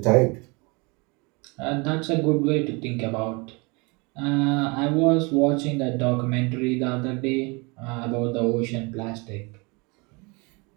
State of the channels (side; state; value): left; quieter; 28.7 dB